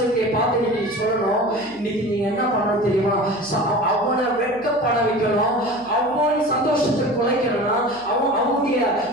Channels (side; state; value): right; noise; hum, 25 dB below the sound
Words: பார்த்து நீங்க சொல்லணும். இன்னைக்கு நீங்க என்ன பண்ணணும் தெரியுமா? அவனை வெட்கப்பட வைக்கணும், அவன் சந்தோஷத்தை குலைக்கணும்னா, அவனுடைய